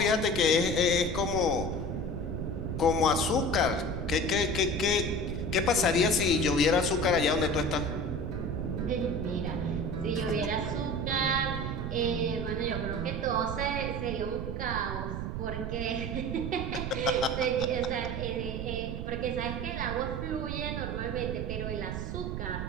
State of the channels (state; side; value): noise; right; rumble, 4 dB below the sound